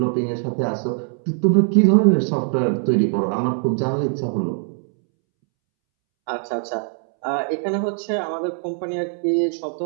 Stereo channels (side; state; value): left; silent; 65 dB below the other